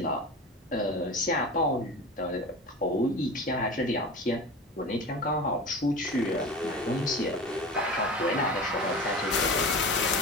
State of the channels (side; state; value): both; normal; correlation 0.32